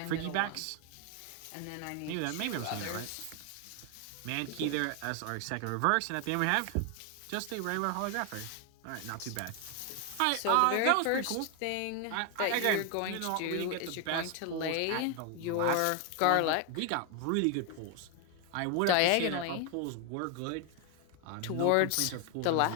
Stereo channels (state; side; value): different; both; correlation 0.01